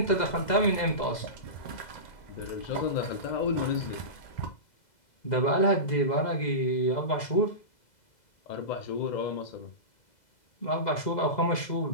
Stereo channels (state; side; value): late; right; 2.0 ms